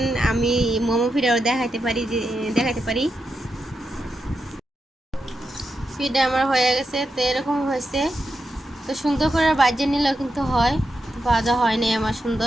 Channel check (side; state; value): both; normal; correlation 0.86